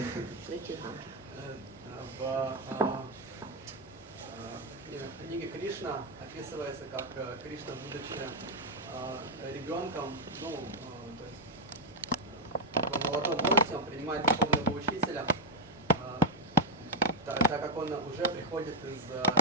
В книге Кришна описывается, как Кришна, будучи ребенком, молодом возрасте, он принимает духовного учителя, так как он уже приходит из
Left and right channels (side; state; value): both; normal; correlation 0.03